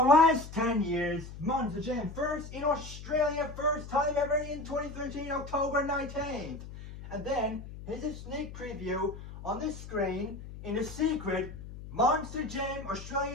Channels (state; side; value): noise; left; hum, 12 dB below the sound